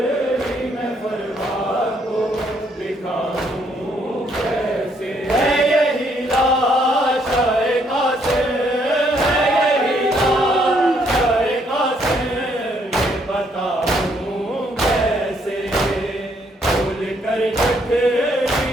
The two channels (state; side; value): normal; both; correlation 0.70